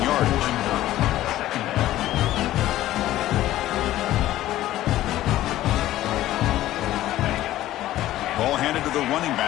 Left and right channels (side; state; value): right; quieter; 14.5 dB